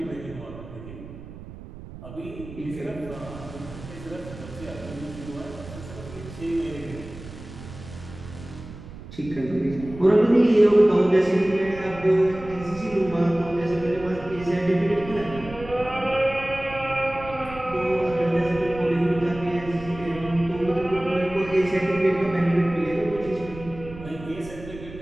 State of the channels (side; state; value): right; noise; rumble, 14 dB below the sound